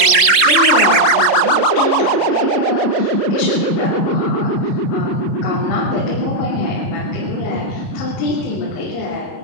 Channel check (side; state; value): right; late; 30 ms